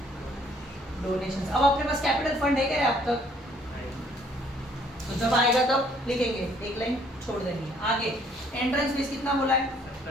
डोनेशंस। अब अपने पास कैपिटल फंड है क्या अब तक? तो जब आएगा तब लिखेंगे, एक लाइन छोड़ देंगे। आगे एंट्रेंस फीस कितना बोला है?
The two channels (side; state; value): both; normal; correlation 0.62